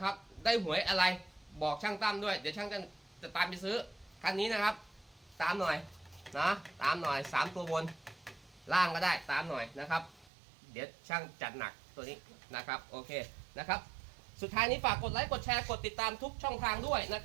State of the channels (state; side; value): drops out; left; at 10.3 s